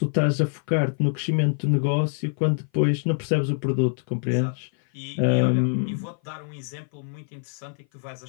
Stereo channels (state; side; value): silent; right; 57 dB below the other